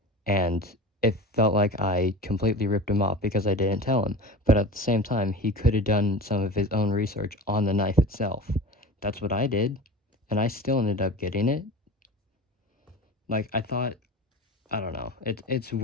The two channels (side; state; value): both; normal; correlation 0.34